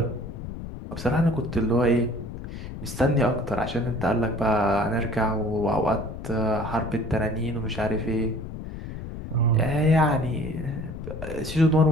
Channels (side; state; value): left; noise; rumble, 9 dB below the sound